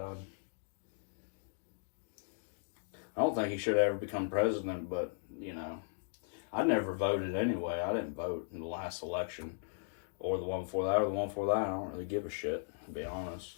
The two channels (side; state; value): right; silent; digital silence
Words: I don't think he should ever become president, but, I never voted anyway. I didn't vote in the last election. Or the one before that, or the one before that. I don't really give a shit, to be